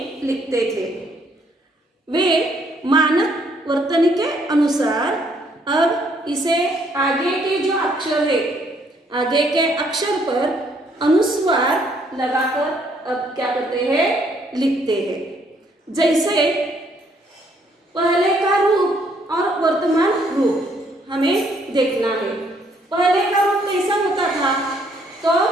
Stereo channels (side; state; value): both; normal; correlation 0.68